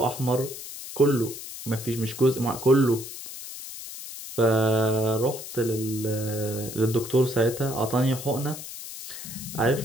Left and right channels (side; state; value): left; noise; hiss, 11 dB below the sound